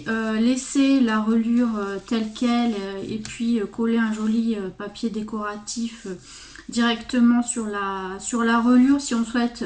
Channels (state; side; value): identical; both; correlation 1.00